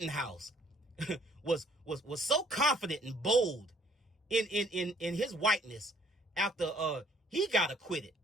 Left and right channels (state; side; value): normal; both; correlation 0.61